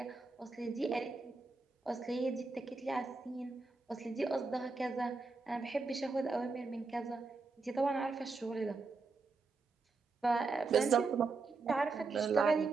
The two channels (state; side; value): quieter; left; 4.0 dB